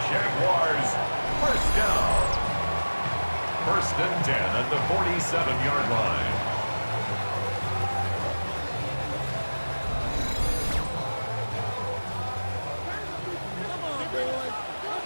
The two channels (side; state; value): both; inverted; correlation -1.00